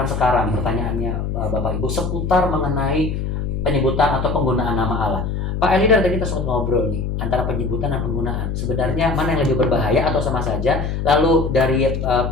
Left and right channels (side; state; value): left; noise; hum, 2 dB below the sound